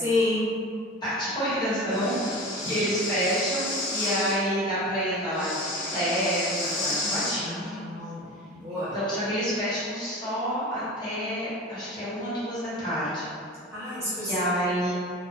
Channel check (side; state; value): both; normal; correlation 0.32